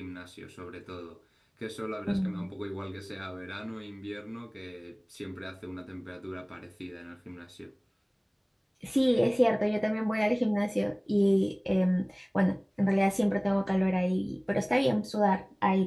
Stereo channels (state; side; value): identical; both; correlation 1.00